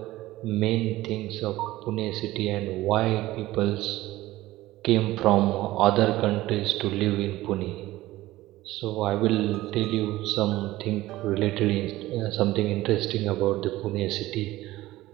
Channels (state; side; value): quieter; left; 17.0 dB